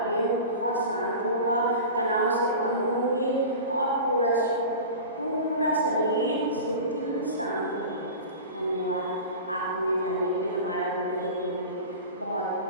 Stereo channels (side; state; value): both; inverted; correlation -0.33